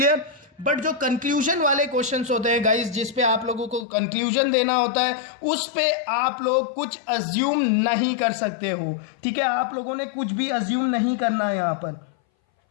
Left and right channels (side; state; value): right; drops out; at 3.9 s